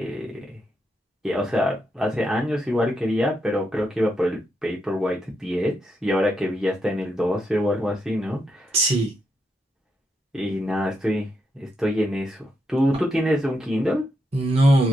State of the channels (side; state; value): both; normal; correlation 0.82